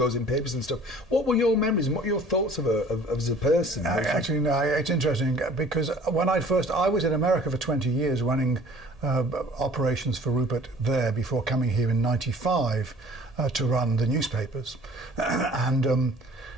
in papers and stuff. What were your memories and what were your thoughts of her as a person? Actually, no, it's interesting because when I was in America for 20 years running operations for Rupert there before coming here in '95 to run the newspapers. And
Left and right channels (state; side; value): normal; both; correlation 0.50